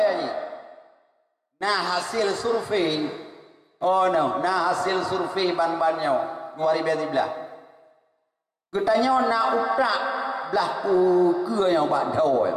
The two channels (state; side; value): identical; both; correlation 1.00